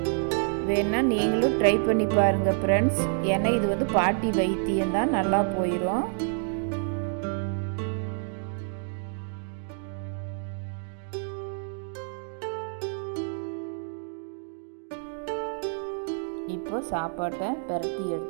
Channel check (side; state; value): left; silent; 59 dB below the other